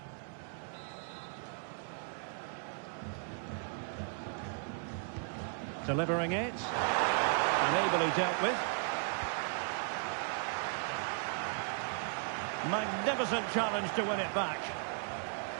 Delivering it. And ably dealt with. Magnificent challenge to win it back.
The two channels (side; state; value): left; silent; 54 dB below the other